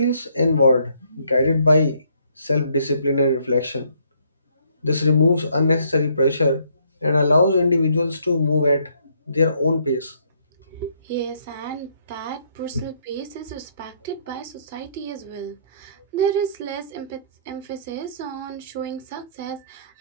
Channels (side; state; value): both; inverted; correlation -0.68